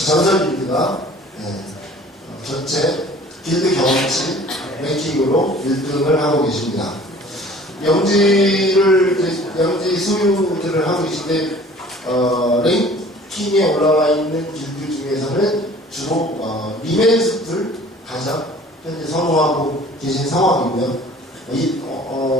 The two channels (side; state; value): both; normal; correlation 0.49